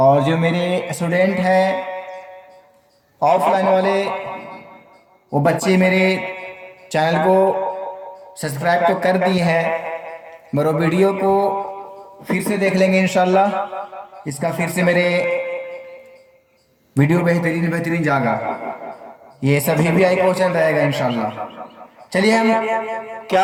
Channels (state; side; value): identical; both; correlation 1.00